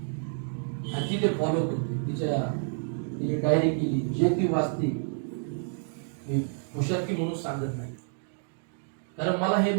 आणि ती ते फॉलो करते. तिने डायरी केली, जे ती वाचते. मी हुशारकी म्हणून सांगत नाही, कारण मला हे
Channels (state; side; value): silent; left; 59 dB below the other